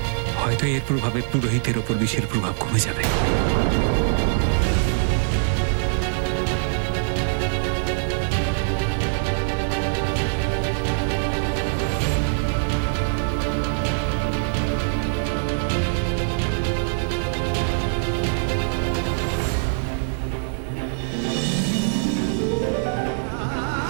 হয়তো এর প্রভাবে পুরোহিতের ওপর বিষের প্রভাব কমে যাবে।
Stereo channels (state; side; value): silent; left; digital silence